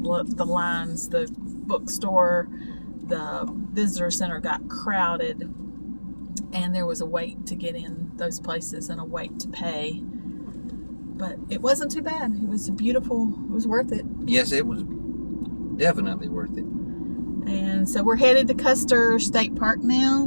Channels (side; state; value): both; inverted; correlation -1.00